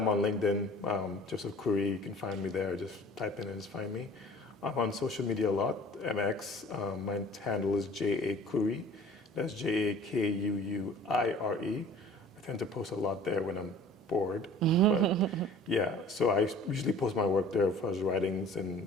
on LinkedIn, Joseph Curry. You can find me there. Just type in and just find me. I'm on social media a lot, MX. My handle is J.A. Curry. That's Jakuuire. I tend to post a lot there when I'm bored. But yeah, so I usually post my work there for his writings and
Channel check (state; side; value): normal; both; correlation 0.47